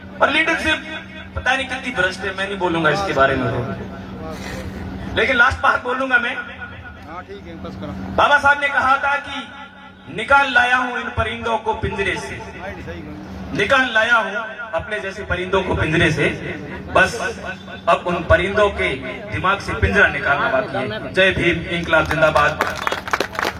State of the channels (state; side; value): identical; both; correlation 1.00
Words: और लीडरशिप पता नहीं कितनी भ्रष्ट है, मैं नहीं बोलूंगा इसके बारे में, लेकिन लास्ट बात बोलूंगा मैं। बाबा साहब ने कहा था कि निकाल लाया हूं इन परिंदों को पिंजरे से, निकाल लाया हूं अपने जैसे परिंदों को पिंजरे से, बस अब उन परिंदों के दिमाग से पिंजरा निकालना बाकी है। जय भीम, इंकलाब जिंदाबाद।